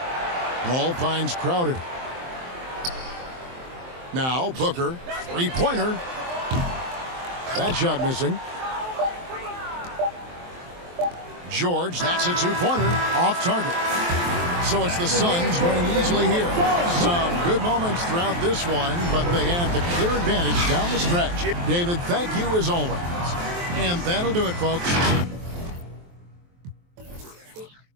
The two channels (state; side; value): late; left; 23 ms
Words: Ball finds Crowder. Now Booker, three-pointer. That shot missing. George, that's a two-pointer, off target. So it's the Suns winning easily here. Some good moments throughout this one, but they have the clear advantage down the stretch. David, thank you as always. And that'll do it, folks.